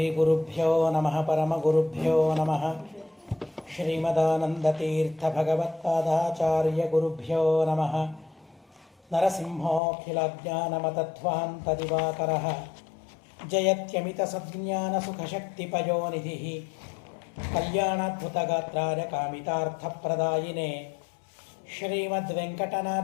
ಗುರುಭ್ಯೋ ನಮಃ ಪರಮಗುರುಭ್ಯೋ ನಮಃ ಶ್ರೀಮದಾನಂದತೀರ್ಥ ಭಗವತ್ಪಾದಾಚಾರ್ಯ ಗುರುಭ್ಯೋ ನಮಃ ನರಸಿಂಹೋಖಿಲಜ್ಞಾನಮತಧ್ವಾಂತದಿವಾಕರಃ ಜಯತ್ಯಮಿತಸಜ್ಞಾನಸುಖಶಕ್ತಿಪಯೋನಿಧಿಃ ಕಲ್ಯಾಣಾದ್ಭುತಗಾತ್ರಾಯ ಕಾಮಿತಾರ್ಥಪ್ರದಾಯಿನೇ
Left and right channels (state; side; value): drops out; right; at 9.8 s